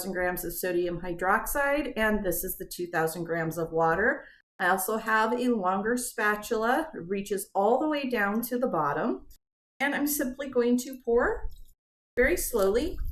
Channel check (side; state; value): both; identical; correlation 1.00